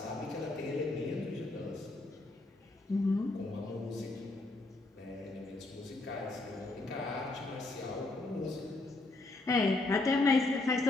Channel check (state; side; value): quieter; right; 3.0 dB